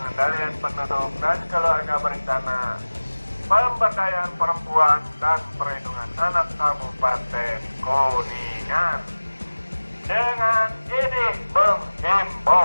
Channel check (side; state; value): both; inverted; correlation -1.00